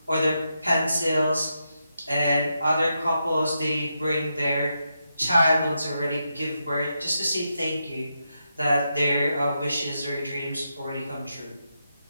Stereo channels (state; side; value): inverted; both; correlation -0.85